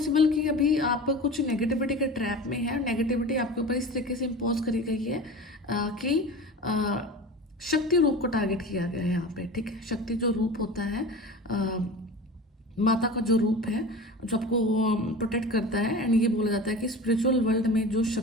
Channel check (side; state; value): both; normal; correlation 0.33